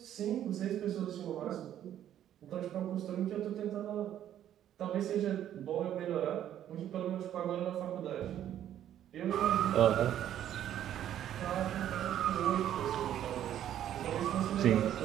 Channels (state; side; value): quieter; left; 11.1 dB